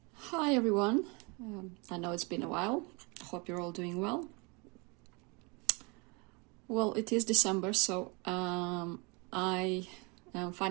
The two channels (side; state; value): left; quieter; 30.0 dB